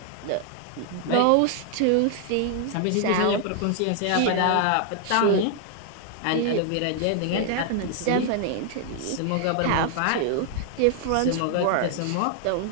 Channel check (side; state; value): both; different; correlation 0.00